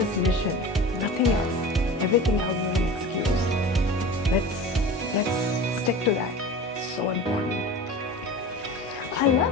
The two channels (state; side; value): normal; both; correlation 0.35